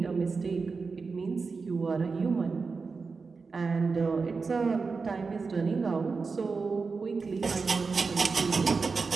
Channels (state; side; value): quieter; left; 4.6 dB